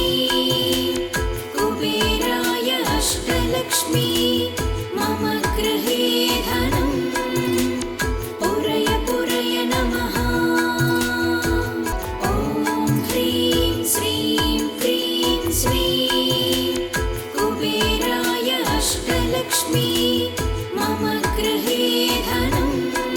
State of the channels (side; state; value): both; identical; correlation 1.00